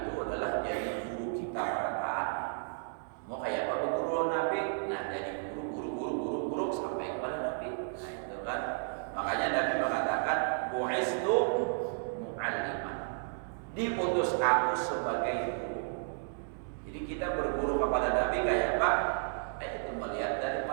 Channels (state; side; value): silent; left; digital silence